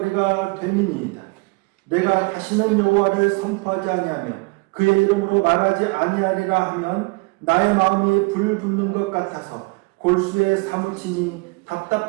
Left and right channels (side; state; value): left; quieter; 27.8 dB